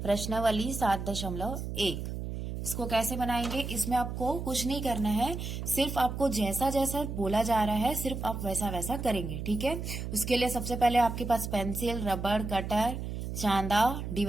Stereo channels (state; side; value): noise; right; hum, 5 dB below the sound